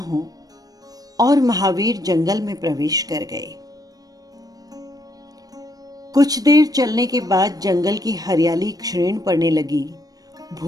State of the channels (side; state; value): left; late; 0.18 ms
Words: और महावीर जंगल में प्रवेश कर गए। कुछ देर चलने के बाद जंगल की हरियाली क्षीण पड़ने लगी,